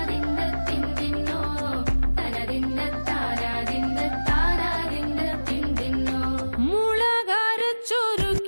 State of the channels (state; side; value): inverted; both; correlation -1.00